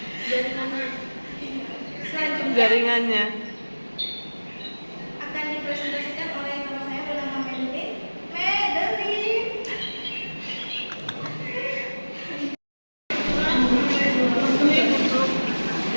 Jaringannya Akan dipresentasikan oleh nama saya bernama Madeline.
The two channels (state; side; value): inverted; both; correlation -1.00